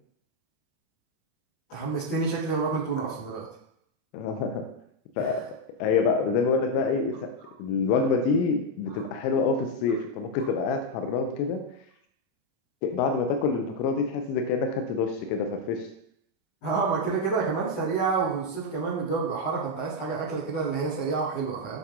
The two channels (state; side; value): late; right; 27 ms